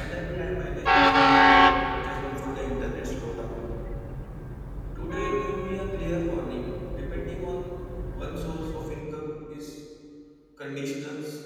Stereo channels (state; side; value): identical; both; correlation 1.00